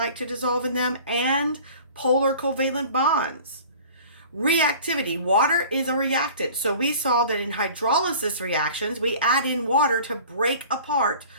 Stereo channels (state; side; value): inverted; both; correlation -0.44